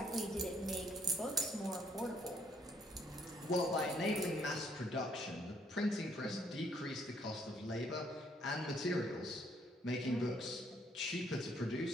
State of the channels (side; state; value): both; normal; correlation 0.66